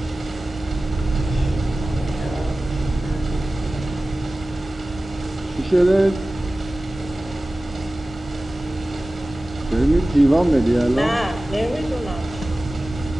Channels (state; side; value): normal; both; correlation 0.97